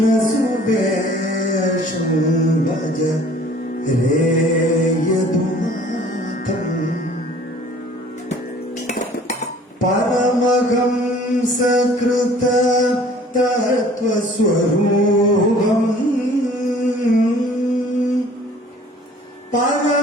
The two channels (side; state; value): both; normal; correlation 0.51